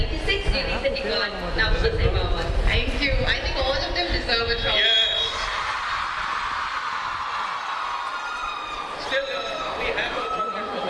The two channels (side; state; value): both; identical; correlation 1.00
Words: We recently got now for Award. Thank you. I think all of them deserve a chocolate. Yes. Still, we have a chocolate for